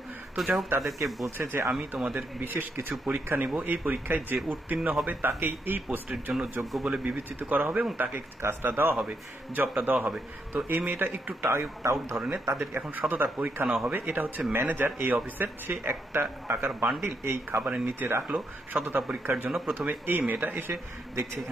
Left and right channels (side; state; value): both; normal; correlation 0.79